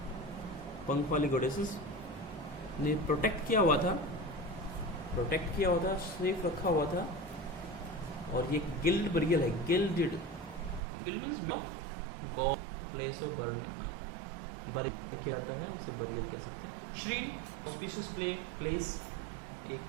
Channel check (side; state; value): left; drops out; at 10.8 s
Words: पंख वाली गॉडेसेस ने प्रोटेक्ट किया हुआ था, सेफ रखा हुआ था। और ये गिल्ड बरियल है, guild means God, place of burial किया जाता है, उसे बरियल कह सकते हैं। श्रीन ऑस्पिशियस प्लेस, एक